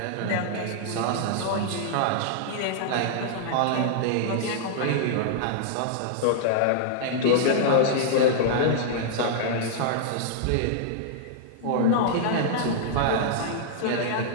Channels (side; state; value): both; different; correlation -0.01